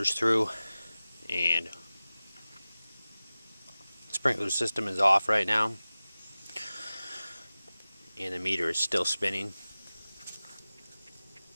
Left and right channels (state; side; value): inverted; both; correlation -0.97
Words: through, and the sprinkler system is off right now, and the meter is still spinning.